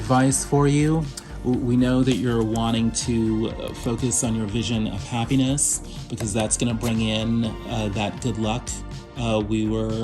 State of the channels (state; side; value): identical; both; correlation 1.00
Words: for you. We know that you're wanting to focus on your vision of happiness because that's going to bring in that good luck we